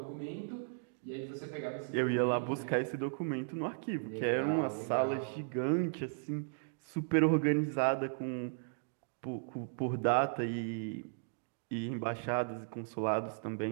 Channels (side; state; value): left; silent; digital silence